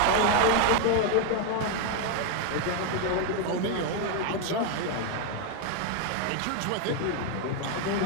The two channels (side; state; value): both; different; correlation 0.01